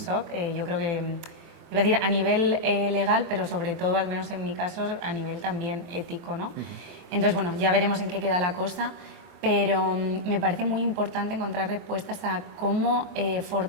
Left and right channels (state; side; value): late; left; 24 ms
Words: Yo creo que, iba a decir a nivel legal, pero sobre todo, al menos en mi caso, a nivel también ético, ¿no? Entonces, bueno, ya veremos en qué queda la cosa, pero me parece muy importante encontrar respuestas a cómo